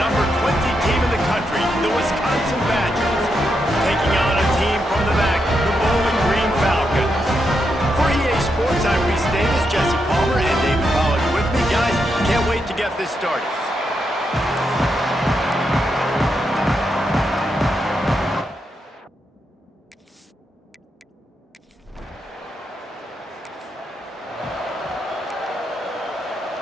20 team in the country, the Wisconsin Badgers, taking on a team from the back, the Bowling Green Falcons. For EA Sports, I'm Reese Davis, Jesse Palmer, and David Pollack with me. Guys, can't wait to get this started.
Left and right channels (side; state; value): both; normal; correlation 0.83